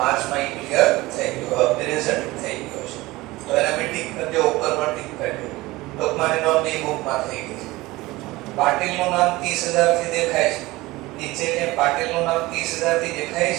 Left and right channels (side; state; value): left; quieter; 20.0 dB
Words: ઈ ક્લિયર થઈ ગયો, પ્રેઝન્ટ થઈ ગયો છે. તો એના બી ટિક કરી દો, ઉપર પર ટિક કરી દો. ટૂંકમાં નોંધ બી બુકમાં થઈ ગઈ છે. પાટીલનું નામ 30000 થી દેખાય છે. નીચે કે પાટીલનું નામ 30000 થી દેખાય